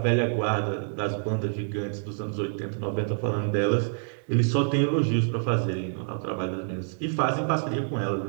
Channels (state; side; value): silent; left; 60 dB below the other